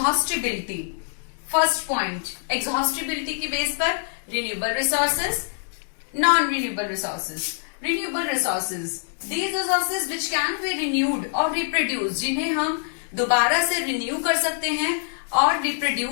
First point, exhaustibility की बेस पर renewable resources, non-renewable resources. Renewable resources, these resources which can be renewed or reproduced, जिन्हें हम दोबारा से renew कर सकते हैं और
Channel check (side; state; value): right; silent; digital silence